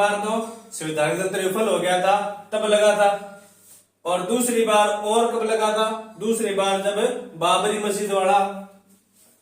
तो संवैधानिक तंत्र विफल हो गया था तब लगा था, और दूसरी बार और कब लगा था? दूसरी बार जब बाबरी मस्जिद वाला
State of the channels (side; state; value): both; identical; correlation 1.00